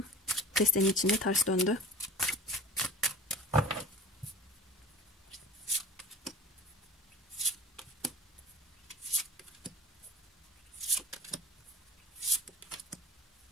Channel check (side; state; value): both; normal; correlation 0.39